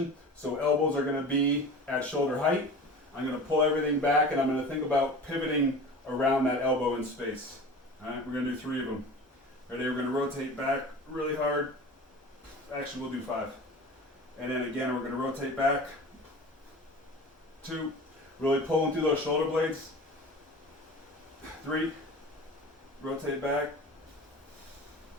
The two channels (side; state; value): both; normal; correlation 0.37